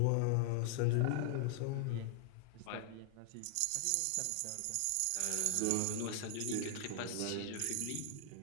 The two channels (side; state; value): both; different; correlation 0.00